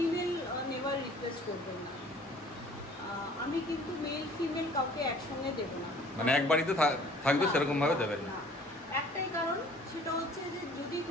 নেওয়ার রিকোয়েস্ট করবেন না। আমি কিন্তু মেল ফিমেল কাউকে একসঙ্গে দেবো না, মানে এক বাড়িতে থাকবে সেরকম ভাবে দেবেন না। একটাই কারণ, সেটা হচ্ছে যে যদি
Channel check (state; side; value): normal; both; correlation 0.52